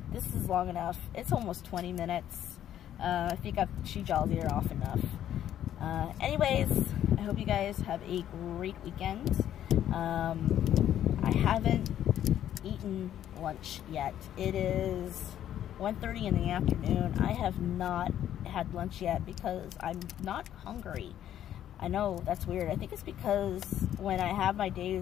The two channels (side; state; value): right; quieter; 11.0 dB